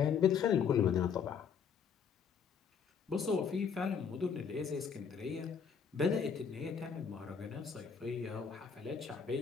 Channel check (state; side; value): quieter; right; 6.7 dB